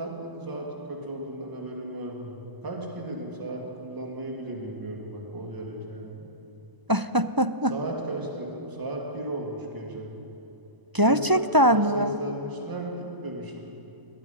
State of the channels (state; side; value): late; left; 1.0 ms